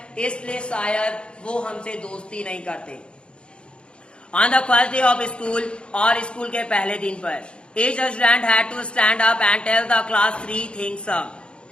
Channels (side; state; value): right; late; 0.056 ms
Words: इसलिए शायद वो हमसे दोस्ती नहीं करते। On the first day of school, और स्कूल के पहले दिन पर, each student had to stand up and tell the class 3 things.